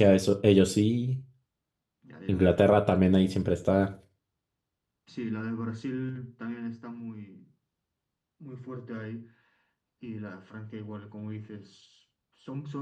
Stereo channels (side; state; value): both; identical; correlation 1.00